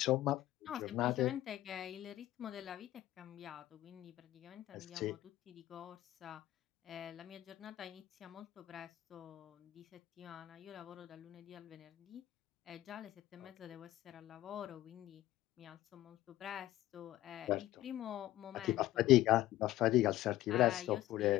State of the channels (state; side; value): quieter; right; 15.1 dB